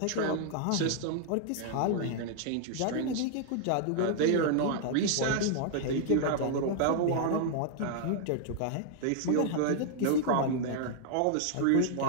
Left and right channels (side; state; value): both; different; correlation -0.01